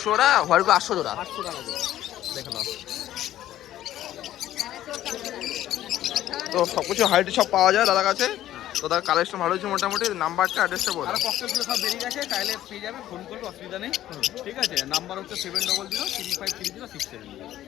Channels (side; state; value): right; quieter; 13.1 dB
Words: টাকা, হোয়াইটগুলো 800 জোড়া। 800 টাকা জোড়া। দেখো নাও, তো সব কিছু হাইট সব পাওয়া যায় দাদার কাছে। তো তার কালেকশন ভালো হচ্ছে মোটামুটি। নাম্বারটা অ্যাড্রেসটা বলো। আর ককটেলগুলো সব বেরিয়ে গেছে, চাইলে পেয়ে যাবে, ফোন করবে, অসুবিধা নেই। ঠিক আছে, নাম্বার হচ্ছে 7003530670।